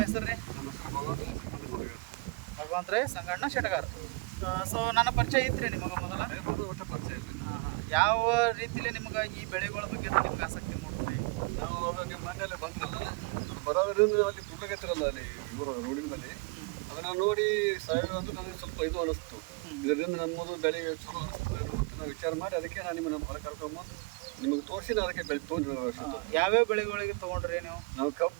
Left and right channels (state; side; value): quieter; left; 29.0 dB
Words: ಹೆಸರು ರೀ? ಭಗವಂತರೇ ಸಂಗಣ್ಣ ಶೆಟಗಾರ್. ಸೊ ನನ್ನ ಪರಿಚಯ ಇತ್ತು ನಿಮಗೆ ಮೊದಲ? ಒಟ್ಟು ಪರಿಚಯ ಇದೆ. ಯಾವ ರೀತಿಯಲ್ಲಿ ನಿಮಗೆ ಈ ಬೆಳೆಗಳ ಬಗ್ಗೆ ನಿಮ್ಗೆ ಆಸಕ್ತಿ ಮೂಡ್ತೀರಿ? ನಾವು ಅವಾಗ ನಿಮ್ಮ ಮನೆಯಲ್ಲೇ ಬಂದ್ರಲ್ಲ, ಅದು ಬರೋದ್ರಿಂದ ಅಲ್ಲಿ ಗುಡ್ಲಗತ್ತಿರಲ್ಲ ಅಲ್ಲಿ ಇವರು ರೋಡಿನ ಮೇಲೆ, ಅದನ್ನು ನೋಡಿ ಸಾವಯವ ಅಂದ್ರೆ ನನಗೆ ಸ್ವಲ್ಪ ಇದು ಅನ್ನಿಸ್ತು. ಇದರಿಂದ ನಮ್ಮದು ಬೆಳೆ ಚಲೋ ಅನ್ನಿಸ್ತದೆ ಅಂತ ನಾವು ವಿಚಾರ ಮಾಡಿ ಅದಕ್ಕೆ ನಾನು ನಿಮ್ಮ ಹೊರ ಕರ್ಕೊಂಡು ನಿಮಗೆ ತೋರಿಸಿ ನಾನು ಅದಕ್ಕೆ ಬೆಳೆ ತೊಗೊಂಡು. ಯಾವ್ಯಾವ ಬೆಳೆಗಳಿಗೆ ತೊಗೊಂಡ್ರಿ ನೀವು? ನಾವು